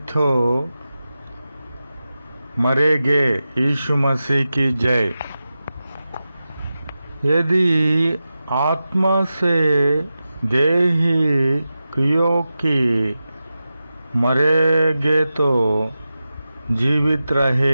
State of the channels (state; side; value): inverted; both; correlation -0.93